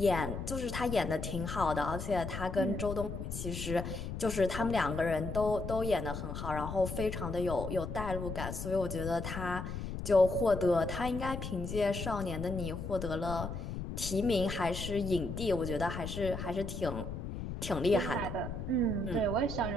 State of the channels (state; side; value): noise; left; rumble, 6 dB below the sound